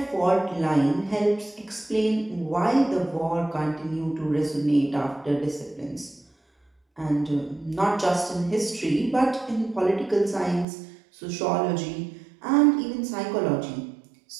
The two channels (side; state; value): left; drops out; at 10.7 s